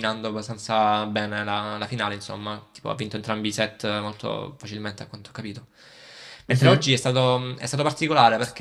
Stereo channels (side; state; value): both; identical; correlation 1.00